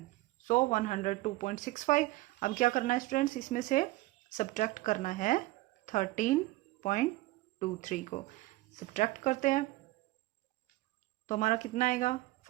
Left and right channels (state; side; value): quieter; left; 19.1 dB